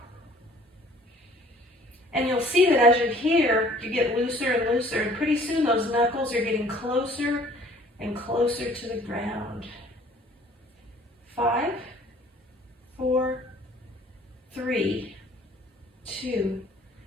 And you'll see that as you're here, you get looser and looser, and pretty soon those knuckles are getting closer and closer to the ground. 5, 4, 3, 2,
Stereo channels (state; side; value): normal; both; correlation 0.54